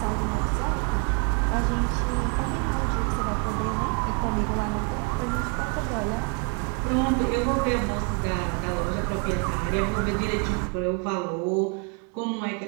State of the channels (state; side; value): quieter; left; 35.5 dB